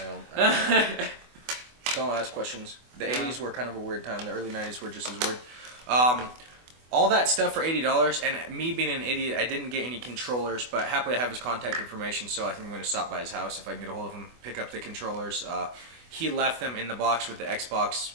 don't ask questions. The Yeah. 80s were kind of a weird time. The early 90s were just as weird. All that stuff for $80, and me being an idiot, I didn't get any controllers, but happily I have his contact information, so I think I'm going to stop by his house if I can get a hold of him, pick up the controllers. He left them in the box with the Xbox,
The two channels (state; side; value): late; left; 24 ms